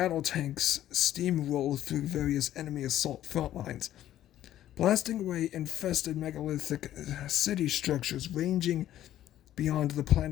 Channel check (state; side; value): quieter; right; 12.5 dB